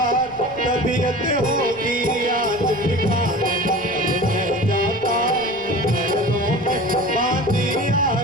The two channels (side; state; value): left; noise; rumble, 24 dB below the sound